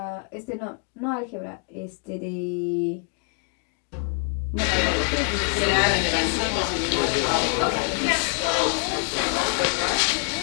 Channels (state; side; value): quieter; right; 39.8 dB